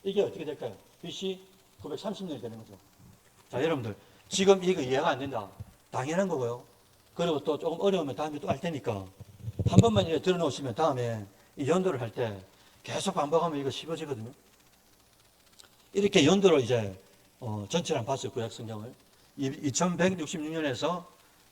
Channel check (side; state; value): both; identical; correlation 1.00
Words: 이게 어떻게 될까요? BC 930년이 되는 거죠. 자, 여러분들 지금 이거 이해가 안 된다. 당연한 거고요. 그리고 또 조금 어려우면 다음에 또 할 테니까 한 번만 이렇게 들어놓으시면 다음에 이 연도를 할 때 계속 반복하면 이거 쉬워지거든요. 이렇게 연도를 이제 전체를 한번 봤어요. 구약 성경을 2166년에서